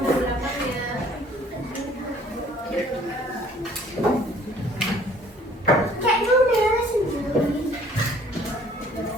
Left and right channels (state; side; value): normal; both; correlation 0.56